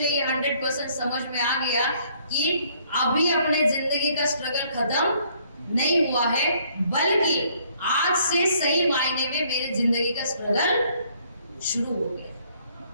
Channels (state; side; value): inverted; both; correlation -0.64